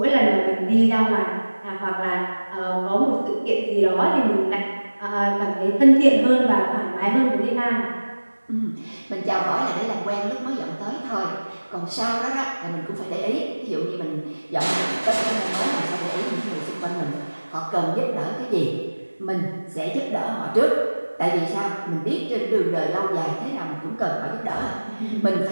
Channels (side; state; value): both; inverted; correlation -1.00